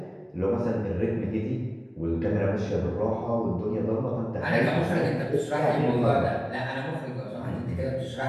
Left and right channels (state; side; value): identical; both; correlation 1.00